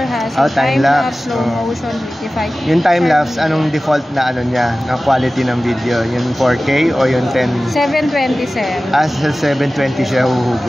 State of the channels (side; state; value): both; normal; correlation 0.96